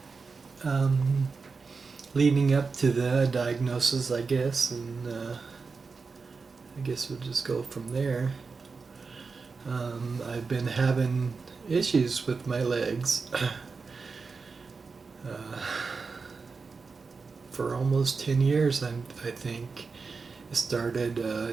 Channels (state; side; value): quieter; left; 4.6 dB